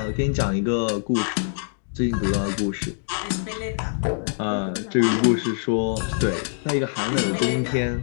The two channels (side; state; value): right; silent; digital silence